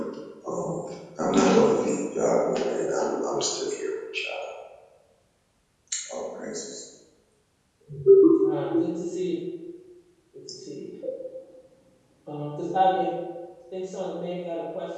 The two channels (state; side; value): identical; both; correlation 1.00